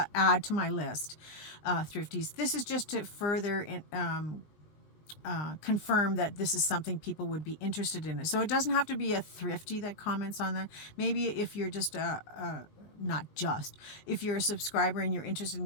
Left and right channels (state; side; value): late; right; 20 ms